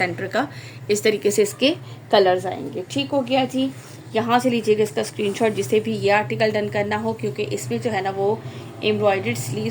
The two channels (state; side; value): identical; both; correlation 1.00